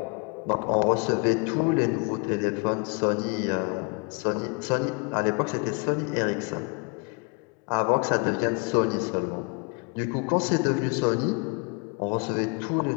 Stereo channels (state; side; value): quieter; right; 33.2 dB